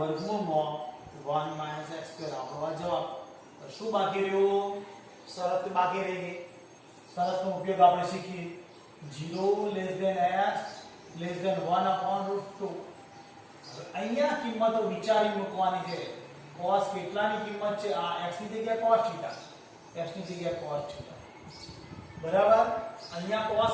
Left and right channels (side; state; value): both; identical; correlation 1.00